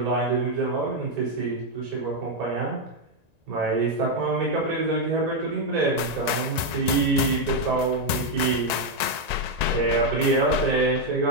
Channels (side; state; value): left; late; 1.9 ms